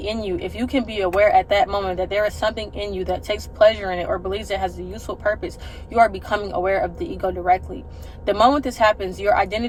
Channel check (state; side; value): identical; both; correlation 1.00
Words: in you, if you can be aware at that moment that there is something in you that takes pleasure in it or believes it has a useful purpose, you are becoming aware of the ego directly. The moment this happens, your